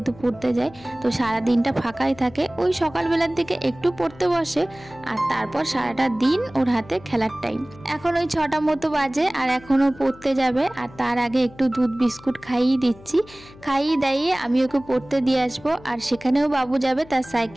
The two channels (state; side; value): noise; left; hum, 21 dB below the sound